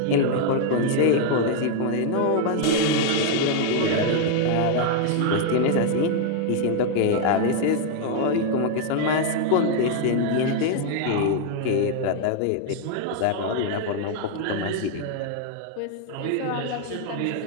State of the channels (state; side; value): different; both; correlation 0.00